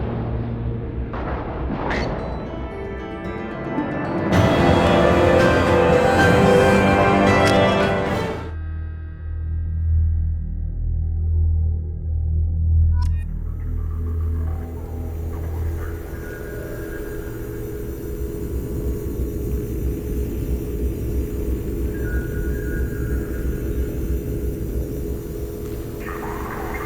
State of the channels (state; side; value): identical; both; correlation 1.00